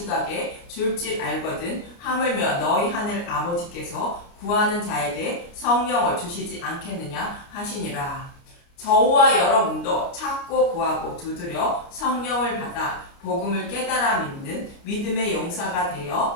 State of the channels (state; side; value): late; right; 29 ms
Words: 줄 줄 알거든 하물며 너희 하늘 아버지께서 구하는 자에게 성령을 주시지 않겠느냐 하시니라. 저와 여러분도 찾고 구하고 두드려 성령을 받아 복음을 깨달아 믿는 믿음의 용사가